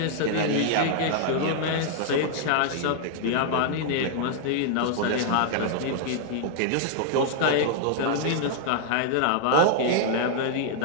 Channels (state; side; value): different; both; correlation -0.01